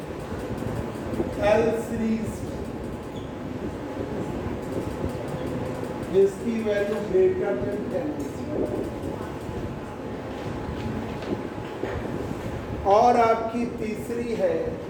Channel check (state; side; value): identical; both; correlation 1.00